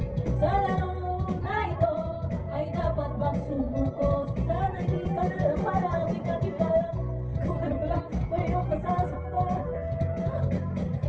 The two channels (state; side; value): identical; both; correlation 1.00